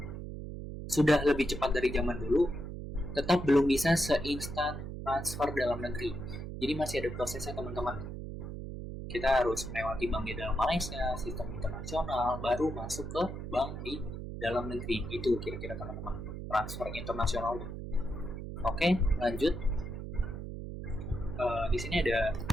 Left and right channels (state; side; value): noise; right; hum, 7 dB below the sound